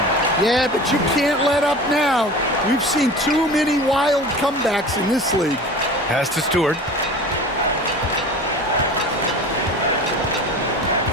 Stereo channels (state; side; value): normal; both; correlation 0.37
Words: Yeah, but you can't let up now. We've seen too many wild comebacks in this league. Pass to Stewart.